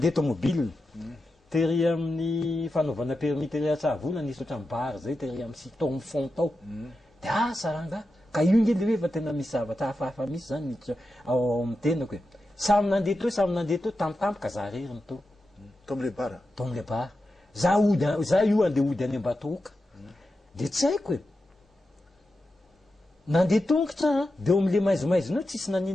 tomobile tery amin'ny fanaovana permis tery atsavola nisy oatra mibary zay tery amin'ny siton fond tao de saranga ka io nge le hoe fa tena misy zavatra hafahafa misy zany ao amin'ny tenako hoe samy nandeha teo tamitampoka za reriny teo tomle bara tomle bara za io andeha ody any Ambatoka de tsy haiko e nandeha tongotra de eo am'le maizimaizina tsisy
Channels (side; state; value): both; normal; correlation 0.90